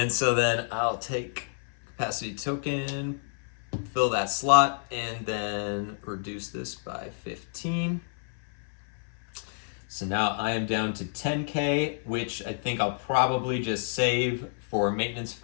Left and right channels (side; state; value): right; silent; 55 dB below the other